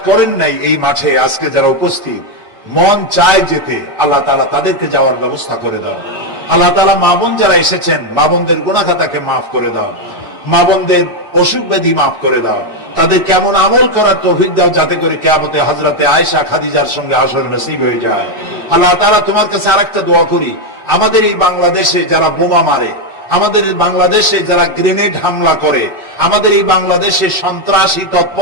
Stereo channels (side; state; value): both; normal; correlation 0.05